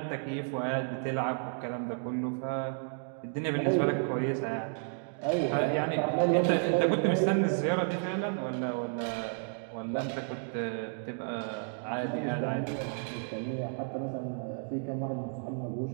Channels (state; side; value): silent; left; 56 dB below the other